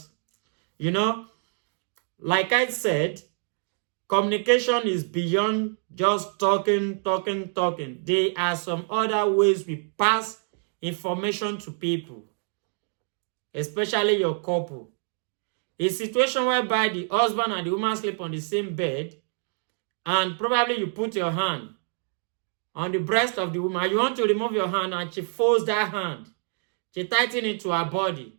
like I said, communication is beyond just talking. There are some other ways we pass information to people, especially your couple. A situation whereby the husband and the woman sleep on the same bed, and probably you put your hand on the breast of the woman. You want to remove your hand, and she folds that hand. She tightens it to her body.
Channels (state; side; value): silent; left; 56 dB below the other